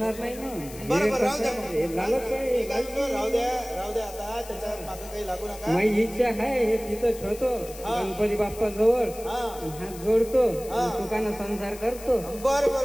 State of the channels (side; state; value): left; noise; hiss, 16 dB below the sound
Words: नाही ना. बरोबर, राहू द्या. राहू द्या आता, त्याच्या मागे काही लागू नका. माझी इच्छा आहे हे तिथं ठेवतो, गणपती बाप्पा जवळ हात जोडतो, सुखानं संसार करतो.